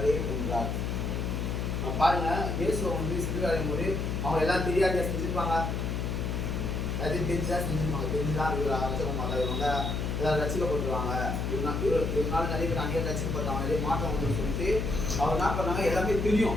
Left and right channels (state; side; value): noise; left; hum, 1 dB below the sound